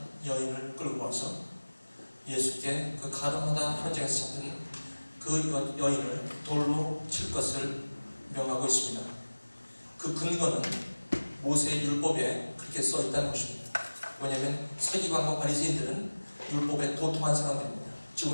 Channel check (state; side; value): inverted; both; correlation -1.00